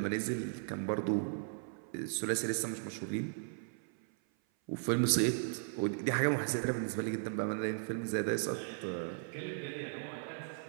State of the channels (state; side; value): silent; left; 53 dB below the other